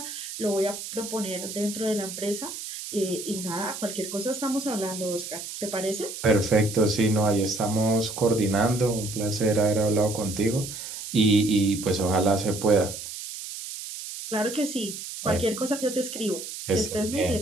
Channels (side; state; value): right; noise; hiss, 9 dB below the sound